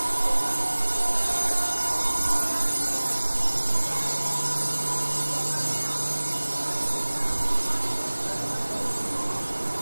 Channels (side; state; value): both; inverted; correlation -1.00